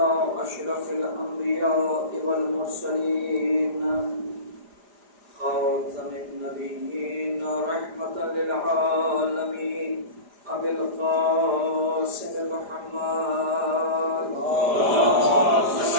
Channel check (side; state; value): left; late; 4.9 ms